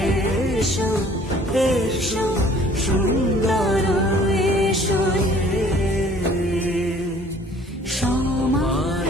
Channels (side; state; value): both; normal; correlation 0.54